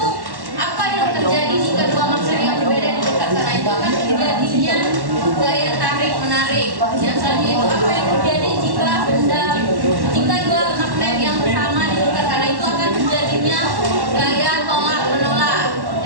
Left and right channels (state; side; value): late; left; 1.1 ms